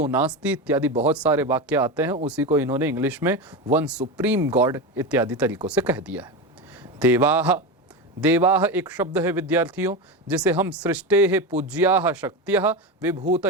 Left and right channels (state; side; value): normal; both; correlation 0.19